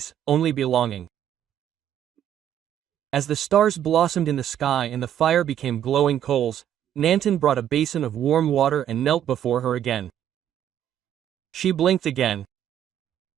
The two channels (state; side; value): quieter; left; 10.4 dB